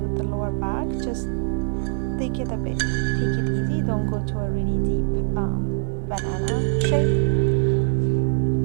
the lower back, just take it easy. Don't go to a really deep banana shape.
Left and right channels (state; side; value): silent; left; 63 dB below the other